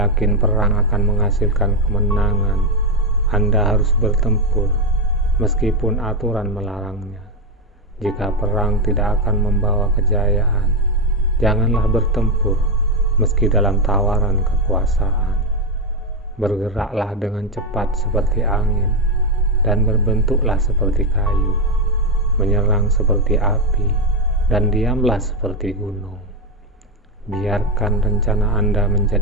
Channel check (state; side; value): normal; both; correlation 0.08